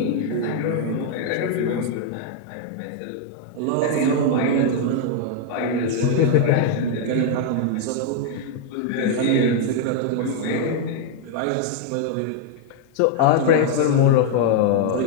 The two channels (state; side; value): different; both; correlation 0.00